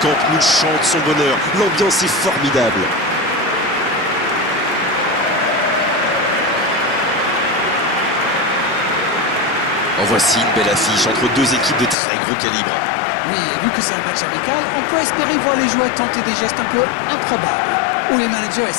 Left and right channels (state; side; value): drops out; right; at 12.0 s